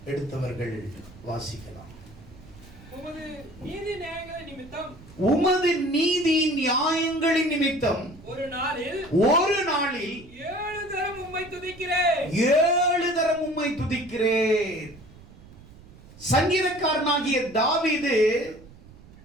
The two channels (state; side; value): noise; right; rumble, 21 dB below the sound